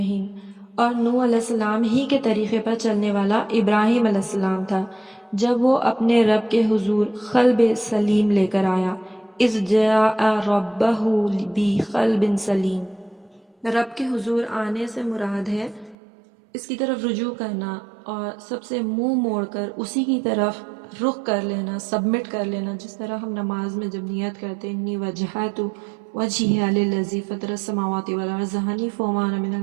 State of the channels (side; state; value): left; drops out; at 16.0 s